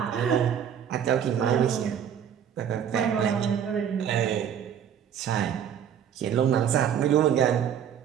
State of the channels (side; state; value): left; quieter; 8.8 dB